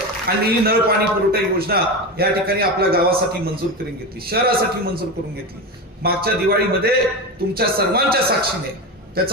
आणि ही नळ पाणी पुरवठा योजना या ठिकाणी आपल्या गावासाठी मंजूर करून घेतली, शहरासाठी मंजूर करून घेतली. मागच्या दिवाळीमध्ये तुमच्या सर्वांच्या साक्षीने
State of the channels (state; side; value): normal; both; correlation 0.20